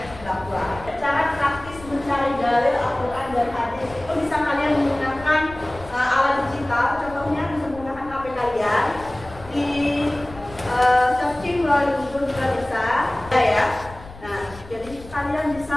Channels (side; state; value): left; noise; rumble, 18 dB below the sound